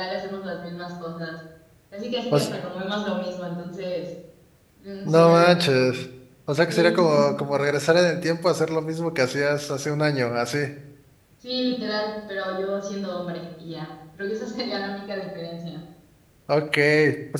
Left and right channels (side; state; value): both; identical; correlation 1.00